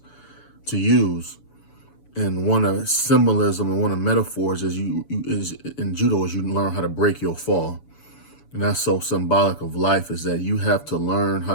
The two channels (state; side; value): late; right; 7.0 ms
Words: to use. And one of symbolism and one of metaphors is is in judo is you learn how to break your fall. And that's so symbolic of life, is that you have to learn how